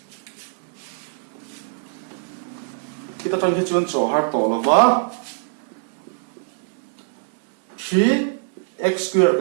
kita tan ke chuan cho har to lawa 3x square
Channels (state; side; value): silent; left; digital silence